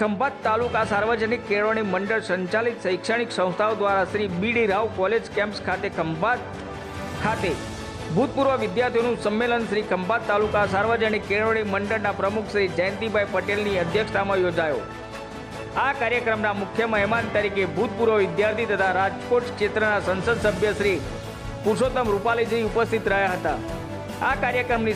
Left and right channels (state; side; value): identical; both; correlation 1.00